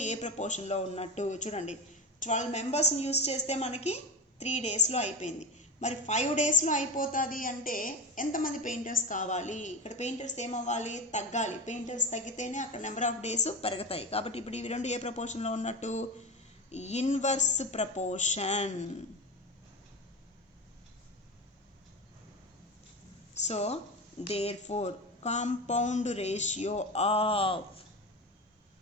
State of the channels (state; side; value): normal; both; correlation 0.22